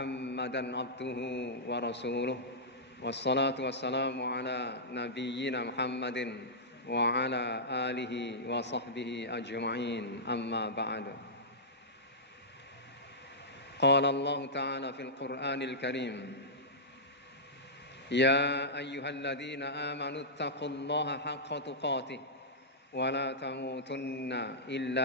عبده ورسوله والصلاة والسلام على نبينا محمد وعلى آله وصحبه أجمعين أما بعد قال الله تعالى في القرآن الكريم يا أيها الذين آمنوا اتقوا الله حق تقاته ولا تموتن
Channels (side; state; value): both; normal; correlation -0.13